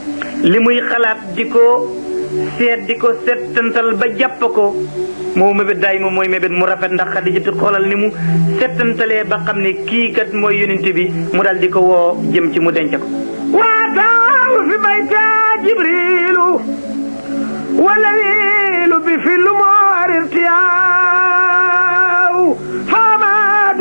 li muy xalaat di ko seet di ko settantal ba jàpp ko moo mébét daay moom mooy mébét mu rafet ndax Xadijatu xoolal ni mu settantalee ba xam ne kii kat mooy yonent bi mu dal di ko woo jëm ci mu denc ko waataaw fi bayta Jibriilu والليل بفل مار ارتياو فما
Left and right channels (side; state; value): both; inverted; correlation -1.00